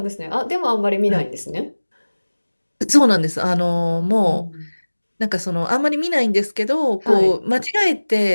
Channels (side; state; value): both; inverted; correlation -1.00